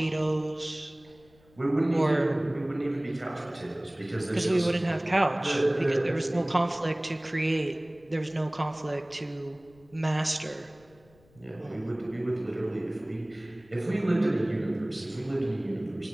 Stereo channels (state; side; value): noise; left; rumble, 29 dB below the sound